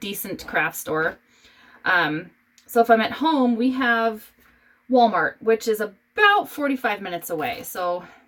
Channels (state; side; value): identical; both; correlation 1.00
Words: craft store. So if I'm at home, we have Walmart, which is about 45 minutes away. So